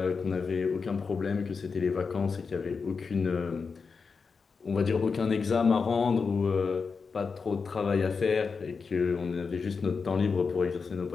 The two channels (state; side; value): quieter; right; 5.1 dB